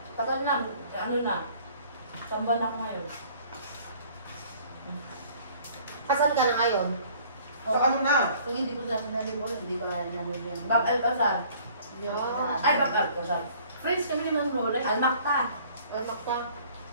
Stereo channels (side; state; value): both; inverted; correlation -0.54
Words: Tagal na, ano na, samban ako ngayon. Kasal ka na ngayon? So ano na? Kung hindi ko sabi na libor, hindi ko nalibor. Bab Alcazar. Ay, Bab Alcazar. Friends kami ng Lola. Almakta. Makta.